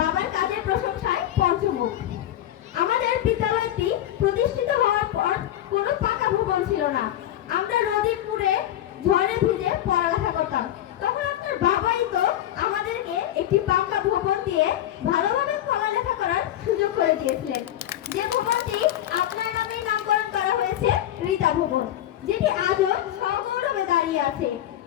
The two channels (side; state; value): right; quieter; 12.4 dB